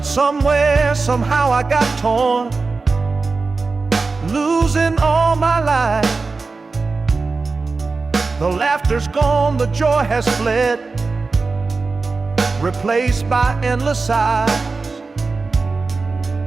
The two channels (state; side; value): quieter; left; 4.1 dB